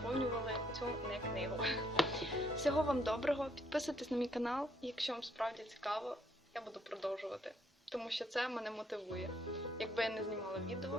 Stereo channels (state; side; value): normal; both; correlation 0.71